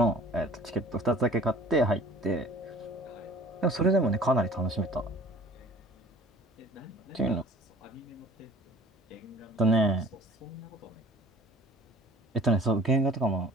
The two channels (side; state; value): both; normal; correlation 0.48